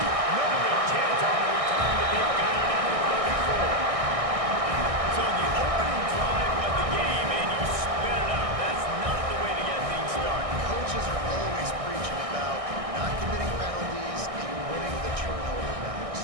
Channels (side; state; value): left; late; 1.6 ms